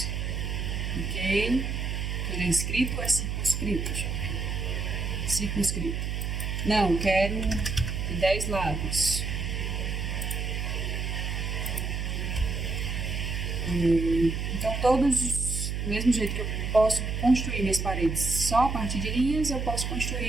Ok. Ele é inscrito ou é circunscrito? Deixa eu ver. Circunscrito. Não, quero 10 lados. Então, todos, do mesmo jeito que eu posso construir minhas paredes só a partir de linhas, eu posso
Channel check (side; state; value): right; noise; hum, 2 dB below the sound